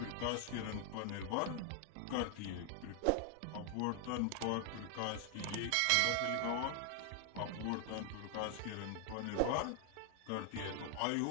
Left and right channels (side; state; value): both; different; correlation 0.00